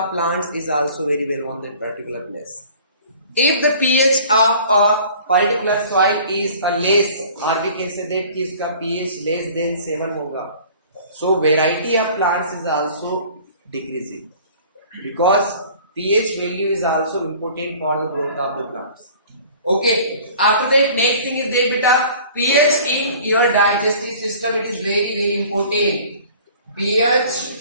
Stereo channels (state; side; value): inverted; both; correlation -0.48